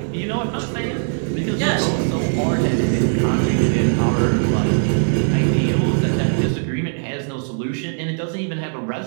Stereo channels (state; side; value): silent; left; digital silence